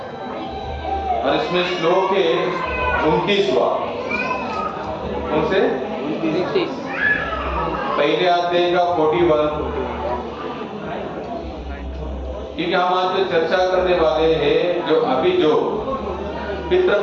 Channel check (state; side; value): identical; both; correlation 1.00